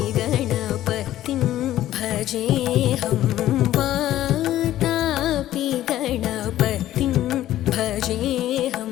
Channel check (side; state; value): right; quieter; 13.5 dB